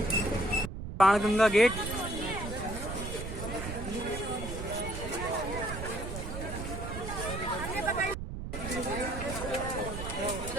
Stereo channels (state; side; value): noise; right; rumble, 6 dB below the sound